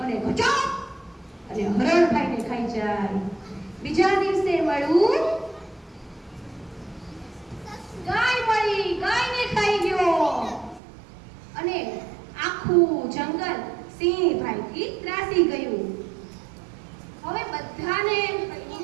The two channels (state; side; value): drops out; left; at 10.8 s